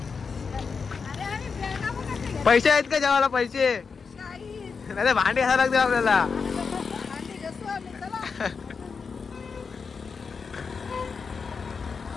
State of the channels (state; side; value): quieter; right; 5.4 dB